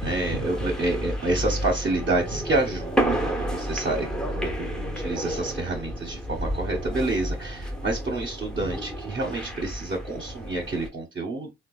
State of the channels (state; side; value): normal; both; correlation 0.57